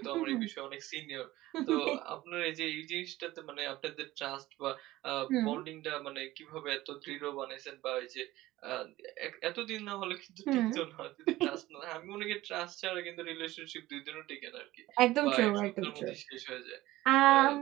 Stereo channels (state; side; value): quieter; left; 17.1 dB